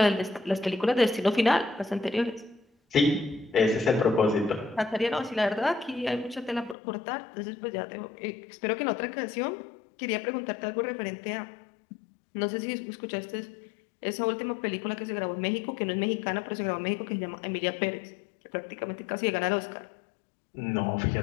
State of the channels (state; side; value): drops out; right; at 6.8 s